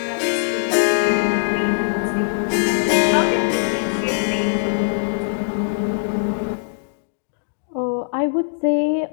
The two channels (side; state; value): right; silent; digital silence